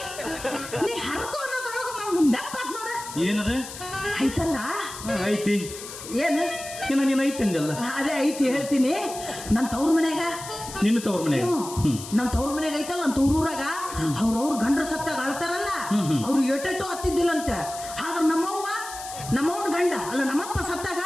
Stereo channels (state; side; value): noise; left; hiss, 12 dB below the sound